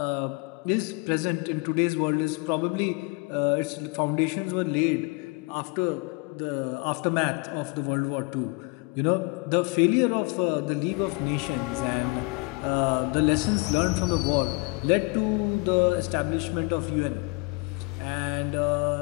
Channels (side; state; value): right; quieter; 28.4 dB